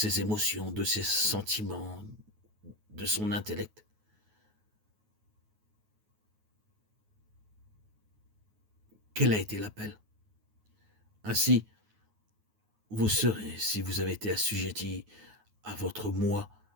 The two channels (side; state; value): left; late; 9.4 ms